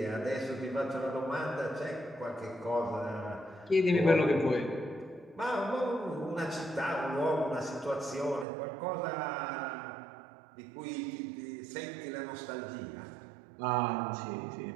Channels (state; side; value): drops out; left; at 8.5 s